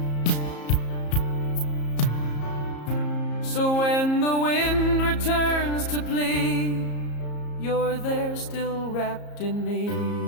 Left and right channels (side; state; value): right; late; 34 ms